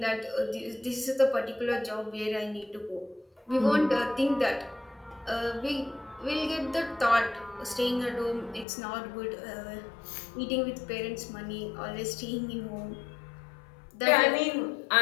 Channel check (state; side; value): drops out; right; at 8.7 s